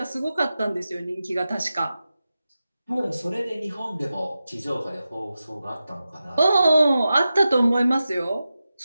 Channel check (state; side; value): inverted; both; correlation -0.92